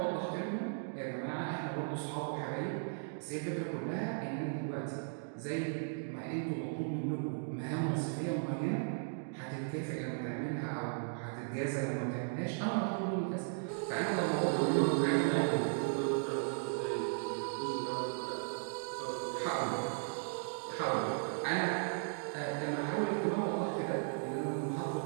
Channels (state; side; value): silent; left; digital silence